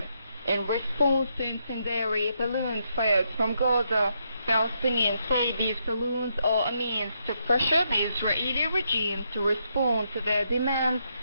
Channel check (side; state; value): both; inverted; correlation -0.79